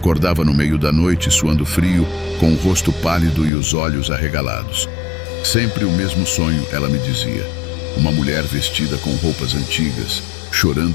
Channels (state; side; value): drops out; right; at 3.5 s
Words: no meio da noite, suando frio, com o rosto pálido e os olhos arregalados. Sempre o mesmo sonho, ela me dizia. Uma mulher vestida com roupas antigas,